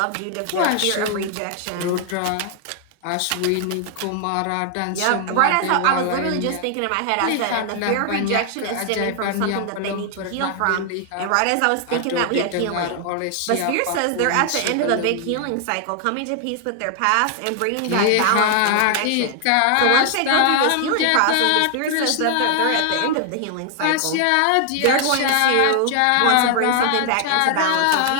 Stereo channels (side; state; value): both; different; correlation 0.00